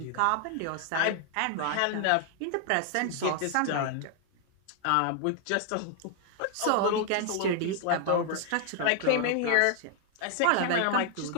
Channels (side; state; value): both; different; correlation 0.00